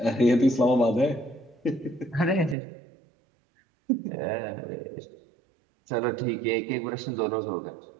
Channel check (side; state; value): left; drops out; at 2.6 s